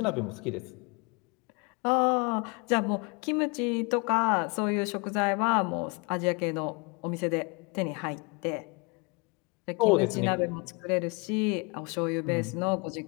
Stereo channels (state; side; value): quieter; right; 30.7 dB